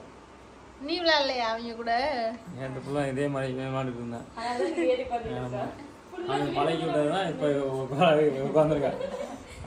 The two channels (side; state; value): both; identical; correlation 1.00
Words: நீ விளையாடலையா அவங்க கூட? என்கிட்ட ஃபுல்லா இதே மாதிரி விளையாண்டுட்டு இருந்தேன். பழகி விட்டதுதான் இப்ப உட்காந்துருக்கா.